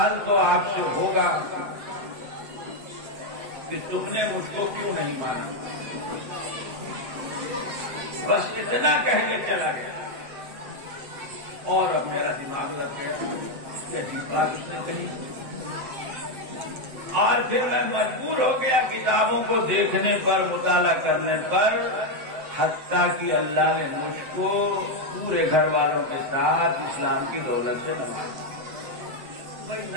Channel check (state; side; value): late; left; 7.5 ms